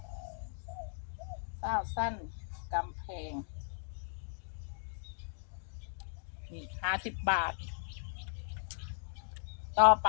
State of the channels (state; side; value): silent; right; digital silence